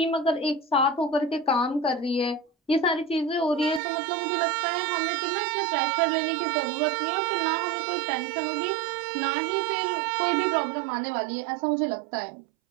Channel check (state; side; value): drops out; left; at 3.8 s